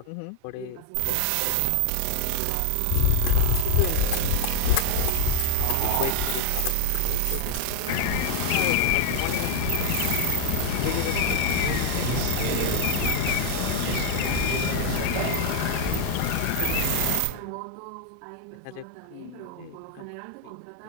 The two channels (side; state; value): both; different; correlation 0.00